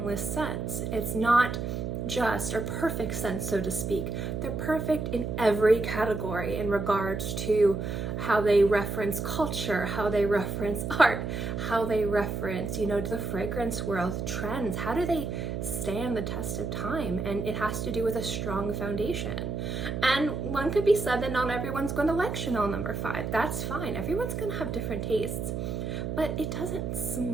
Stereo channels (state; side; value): noise; right; hum, 3 dB below the sound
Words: scents. It's not just or perfect scents, so to speak. They're perfect in every category in regards to how they reference culture, how they reference art, how they reference, you know, the fragrance world trends. How do they stand the test of time? And it has to do with a strong foundation. And one could be said that not everyone's going to like Chanel No. 5. That's fine. Everyone's going to have different tastes. But it doesn't